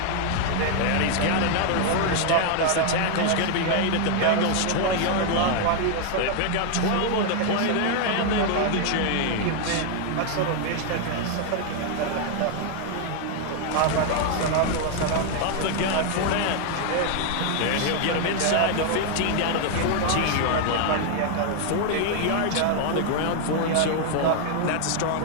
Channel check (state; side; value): different; both; correlation 0.00